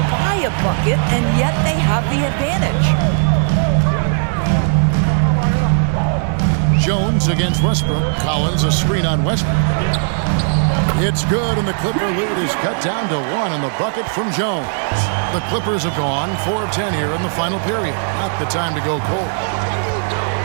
buy a bucket, and yet they have the advantage. Jones against Westbrook. Collins a screen on Westbrook. It's good, and the Clipper lead is cut down to 1 in the bucket from Jones. The Clippers have gone 4 of 10 here in the final period. Not the time to go cold.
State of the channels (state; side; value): silent; left; 68 dB below the other